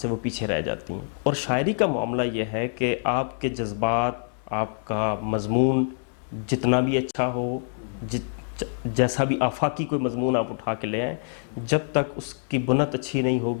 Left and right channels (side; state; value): right; silent; digital silence